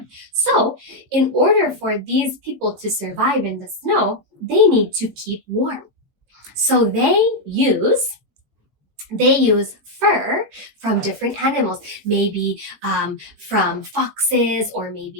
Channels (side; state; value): both; normal; correlation 0.00